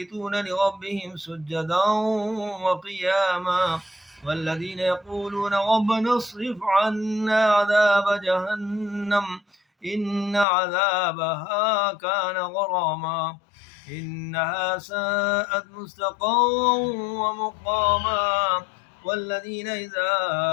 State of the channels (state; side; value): drops out; right; at 10.5 s